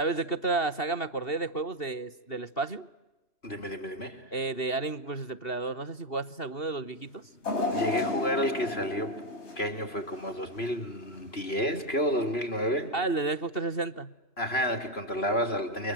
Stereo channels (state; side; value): late; right; 3.0 ms